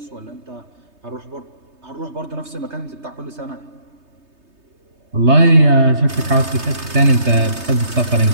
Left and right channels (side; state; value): left; late; 3.3 ms